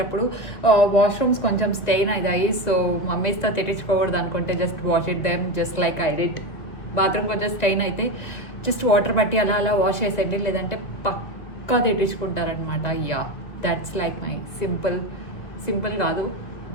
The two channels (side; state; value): right; late; 2.1 ms